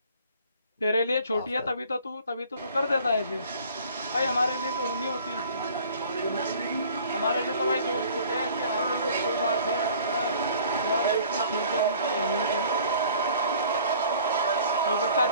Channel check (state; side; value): inverted; both; correlation -0.51